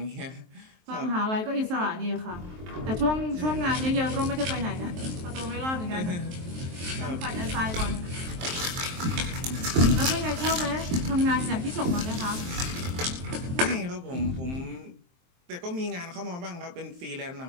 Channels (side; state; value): left; late; 23 ms